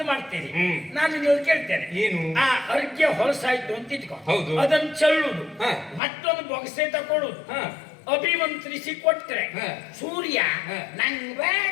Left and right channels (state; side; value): drops out; right; at 6.0 s